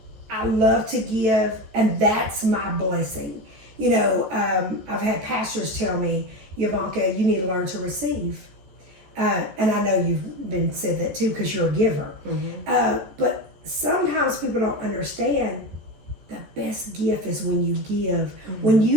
I love to give, and that's my blessing. I've had pastors tell me, Yvonnca, you need to learn to receive. And I know you've been said that too because you're a giver. Mm-hmm. But sometimes people don't understand the best gift is when you give. Mm-hmm. When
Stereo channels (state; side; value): late; left; 14 ms